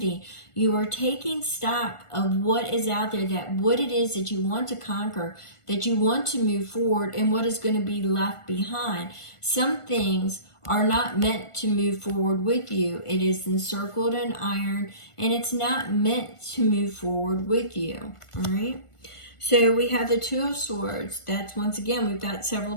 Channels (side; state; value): right; late; 1.5 ms